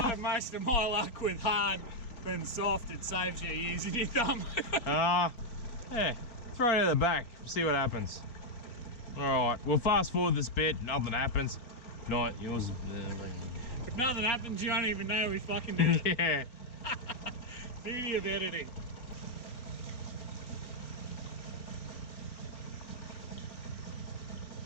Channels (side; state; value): right; late; 4.3 ms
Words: have most of my luck with hard than soft. It saves you using your thumb. Yeah, throw it at the back, see what happens. Alright, we'll fast forward this bit, nothing happens. Not yours. If nothing happens, you won't even know we fucking did it. Yeah. Beauty of editing.